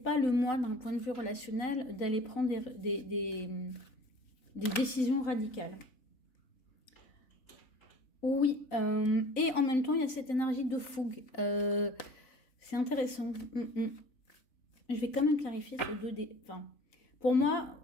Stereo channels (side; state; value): right; late; 4.0 ms